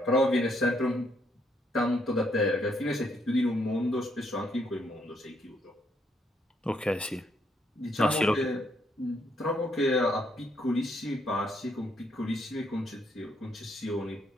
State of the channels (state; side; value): normal; both; correlation 0.73